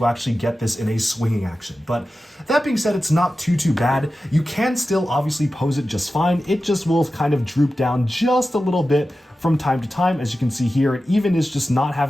actually get this in a swinging action. But that being said, it's not too bad. You can still obviously pose it just fine. It just will kind of droop down just a little bit from time to time. As you can see here, it even is just not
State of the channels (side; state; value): both; normal; correlation 0.93